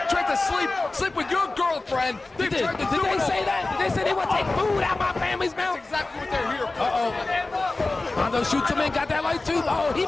tried to sleep with your girlfriend. They've tried to Did they say that? Did they say they want to take food out of my family's mouth? That's exactly what they're here for. Uh-oh. Mondo shoots him in, got that light tube. Oh, he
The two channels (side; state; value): right; quieter; 3.2 dB